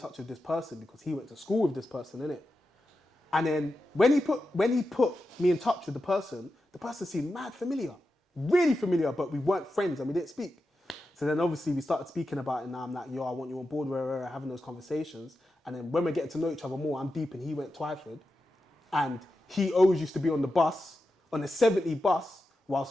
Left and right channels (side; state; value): both; normal; correlation 0.90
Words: with this person because he went to school with this person, innit? And then when he put me in touch with the person seemed mad familiar, really familiar, but we weren't friends and we didn't speak. So then obviously we started speaking about it, and now I'm like, yo, I want you on board, we're having those conversations. And then when we're getting to know each other more, I'm deep and he went Twyford. And he always used to be on the bus, on the 70 bus,